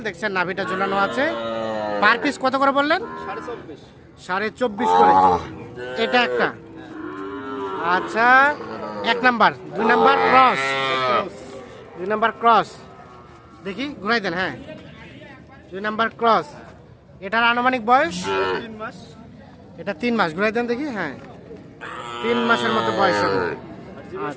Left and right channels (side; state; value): both; identical; correlation 1.00